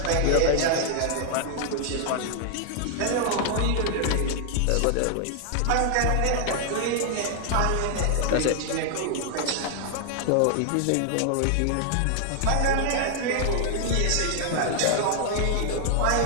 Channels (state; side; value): different; both; correlation 0.00